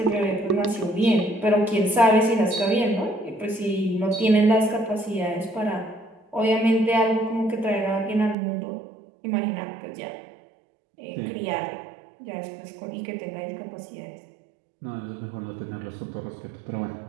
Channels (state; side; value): drops out; left; at 8.3 s